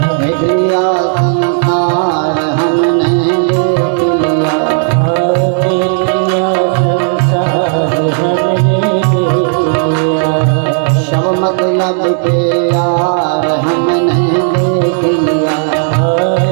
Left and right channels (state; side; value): silent; left; digital silence